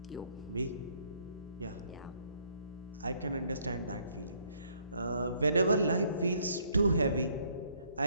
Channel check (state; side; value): inverted; both; correlation -0.66